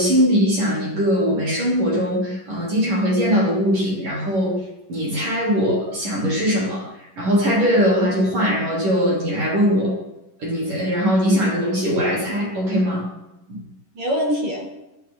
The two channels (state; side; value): late; left; 11 ms